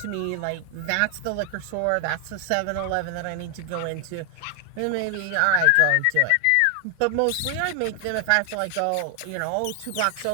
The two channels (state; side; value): different; both; correlation 0.00